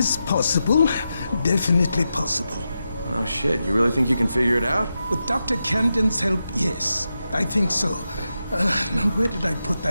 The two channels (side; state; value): both; inverted; correlation -0.89